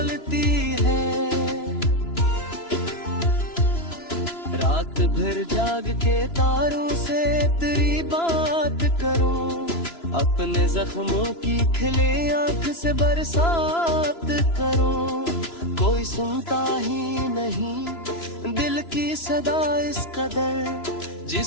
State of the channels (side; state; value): right; late; 3.0 ms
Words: है। रात भर जाग के तारों से तेरी बात करूं, अपने जख्मों की खिले आंख से बरसात करूं। कोई सुनता ही नहीं दिल की सदा इस कदर,